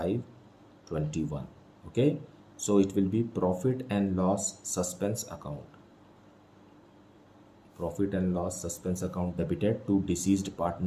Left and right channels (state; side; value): identical; both; correlation 1.00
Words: Okay, so it will be profit and loss suspense account. Profit and loss suspense account debited to deceased